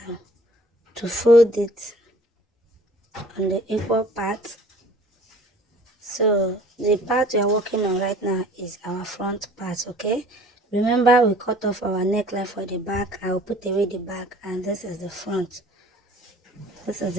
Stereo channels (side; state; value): both; normal; correlation 0.51